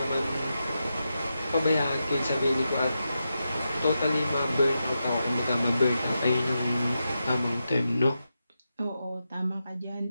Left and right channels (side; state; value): both; inverted; correlation -0.88